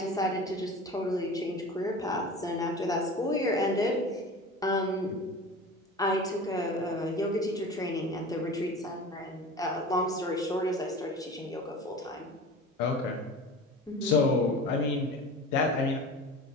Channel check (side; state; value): both; normal; correlation 0.36